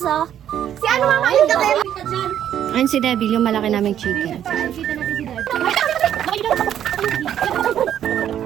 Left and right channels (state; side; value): quieter; left; 10.3 dB